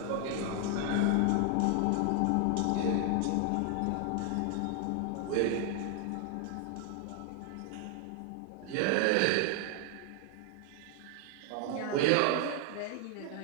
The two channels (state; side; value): different; both; correlation 0.00